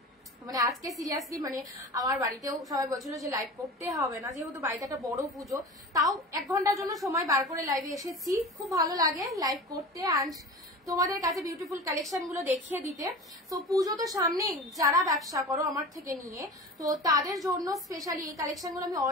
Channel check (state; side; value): normal; both; correlation 0.34